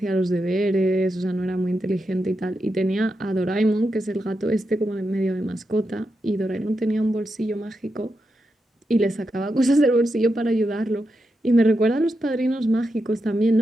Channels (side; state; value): both; normal; correlation 0.87